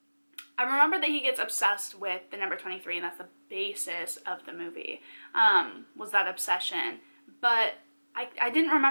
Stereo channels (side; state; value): both; inverted; correlation -1.00